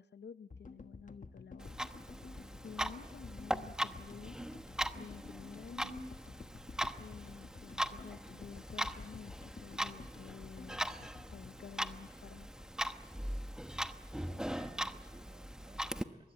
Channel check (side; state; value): both; normal; correlation 0.87